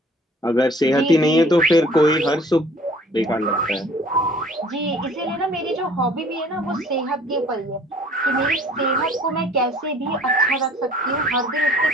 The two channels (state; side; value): normal; both; correlation 0.53